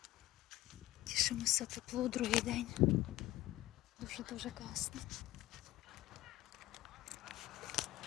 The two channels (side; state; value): right; quieter; 16.0 dB